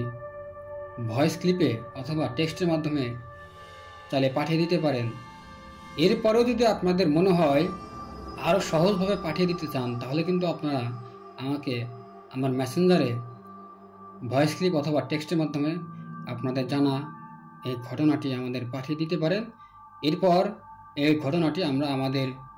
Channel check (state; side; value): identical; both; correlation 1.00